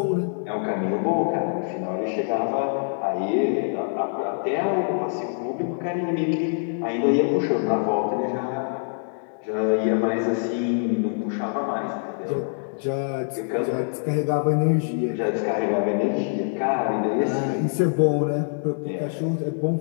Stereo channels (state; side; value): silent; right; 62 dB below the other